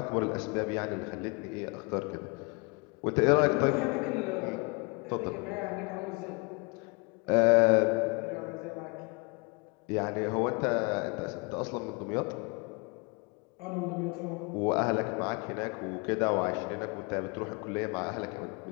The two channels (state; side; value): quieter; right; 30.2 dB